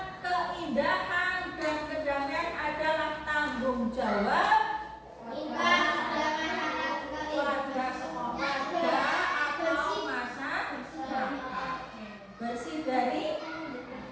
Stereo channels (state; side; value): identical; both; correlation 1.00